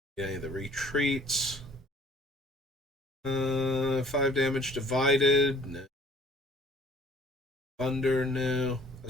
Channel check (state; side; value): normal; both; correlation 0.54